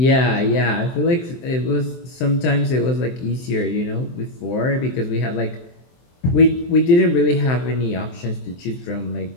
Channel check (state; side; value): late; right; 23 ms